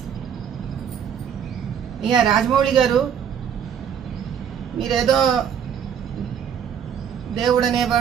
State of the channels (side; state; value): left; quieter; 8.4 dB